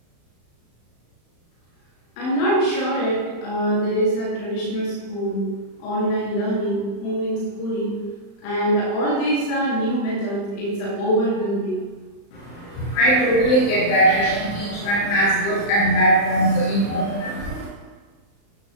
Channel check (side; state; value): right; late; 35 ms